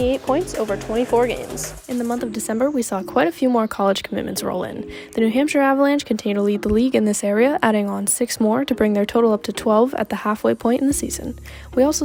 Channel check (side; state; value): both; identical; correlation 1.00